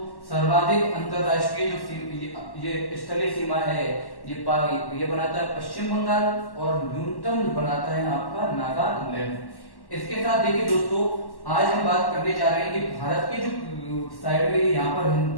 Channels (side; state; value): right; late; 1.1 ms